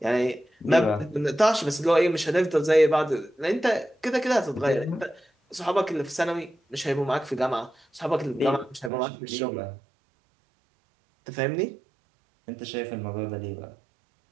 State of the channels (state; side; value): drops out; left; at 8.9 s